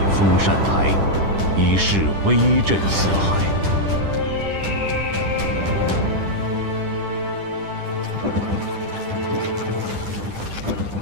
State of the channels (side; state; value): left; late; 10 ms